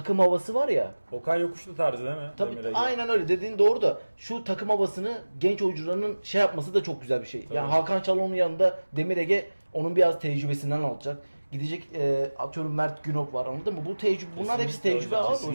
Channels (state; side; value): inverted; both; correlation -1.00